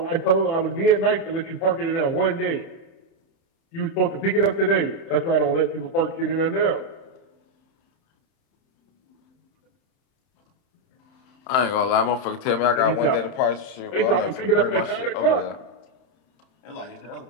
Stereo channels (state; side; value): late; right; 31 ms